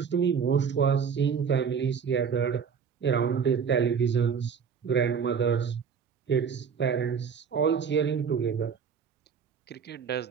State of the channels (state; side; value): quieter; left; 6.7 dB